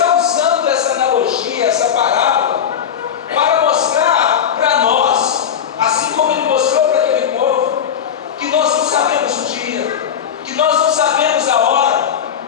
usando essa analogia, essa parábola, para mostrar para nós, assim como ele mostrou para aquele povo, que nós não sabemos o dia, que nós não sabemos a hora,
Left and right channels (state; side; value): quieter; right; 8.4 dB